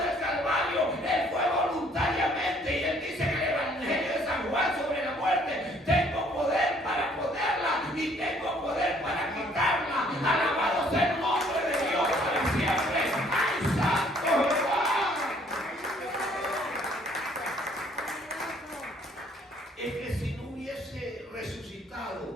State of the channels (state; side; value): normal; both; correlation 0.61